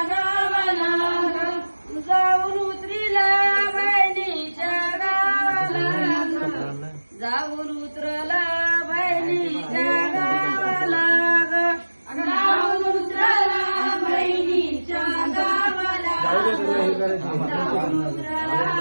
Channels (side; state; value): both; inverted; correlation -1.00